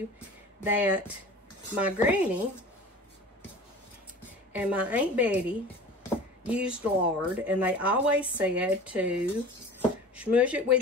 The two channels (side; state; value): both; normal; correlation 0.39